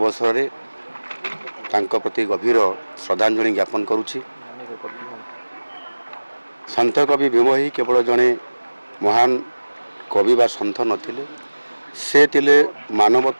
में तांको प्रति गभीर श्रद्धांजलि ज्ञापन करुछि। सन्थ कवि भीम ही केवल जड़े महान कवि बा सन्थ नथिले, से तिले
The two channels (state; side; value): inverted; both; correlation -1.00